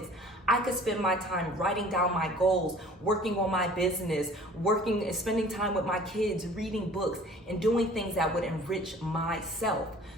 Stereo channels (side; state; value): both; normal; correlation 0.49